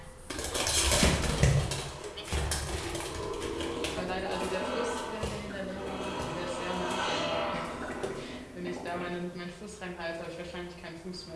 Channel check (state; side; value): identical; both; correlation 1.00